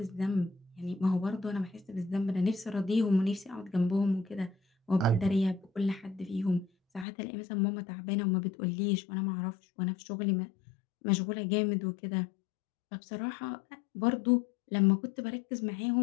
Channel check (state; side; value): drops out; right; at 7.1 s